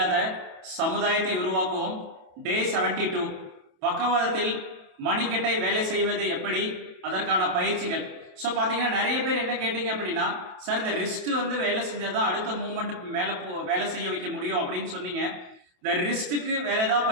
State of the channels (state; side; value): late; left; 27 ms